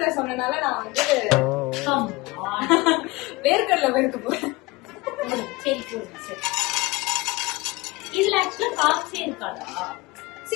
சொன்னனால நான் வந்து வேர்க்கடலை வெறுக்க போறேன். சரி போடுங்க. சரி, இதுல ஆக்சுவலா காப்ஸே இருக்காதா?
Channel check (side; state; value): right; quieter; 22.6 dB